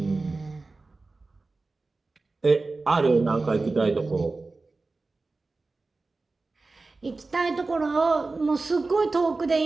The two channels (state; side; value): quieter; left; 3.6 dB